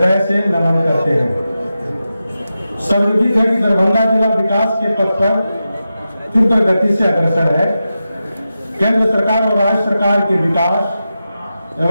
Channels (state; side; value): inverted; both; correlation -0.91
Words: से नमन करते हैं। सर्वविदित है कि दरभंगा जिला विकास के पथ पर तीव्र गति से अग्रसर है। केंद्र सरकार और राज्य सरकार के विकास